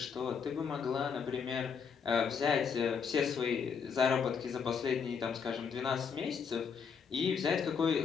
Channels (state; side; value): quieter; right; 6.3 dB